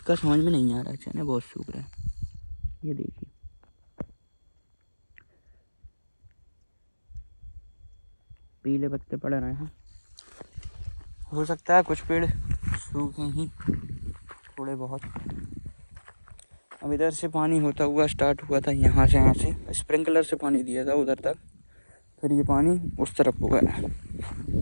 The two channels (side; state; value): both; inverted; correlation -1.00